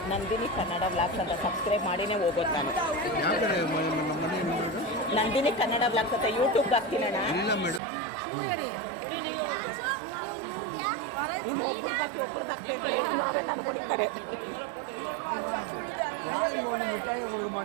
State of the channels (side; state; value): left; drops out; at 7.8 s